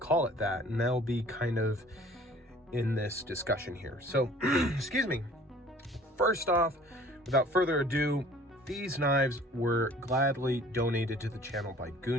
call it that, and that'll be kind of in this discussion here. So, excuse me. First off, without further ado, these knives were gladly donated to the channel by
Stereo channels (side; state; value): both; normal; correlation 0.50